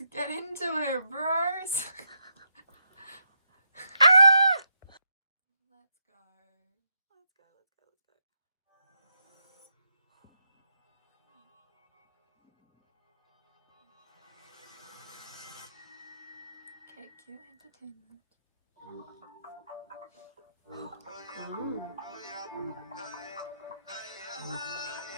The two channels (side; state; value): both; inverted; correlation -0.81